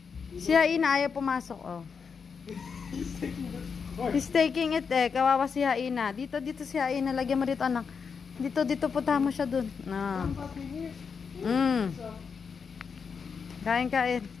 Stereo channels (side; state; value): right; quieter; 5.9 dB